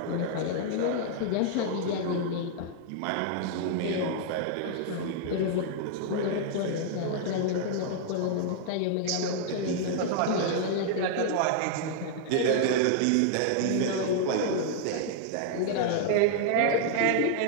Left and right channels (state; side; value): different; both; correlation -0.01